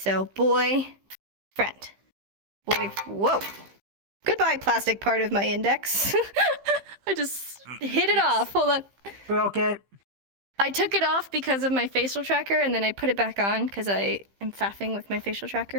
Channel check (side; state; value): left; late; 15 ms